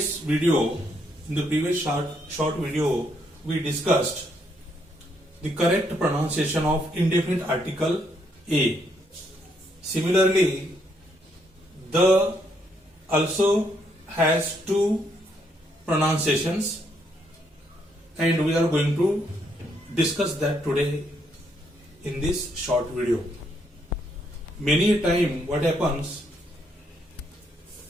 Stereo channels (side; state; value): both; normal; correlation 0.74